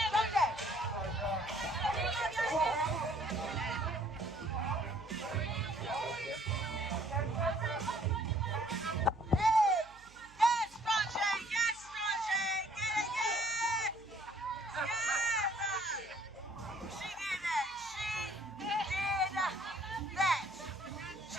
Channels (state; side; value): noise; right; hum, 24 dB below the sound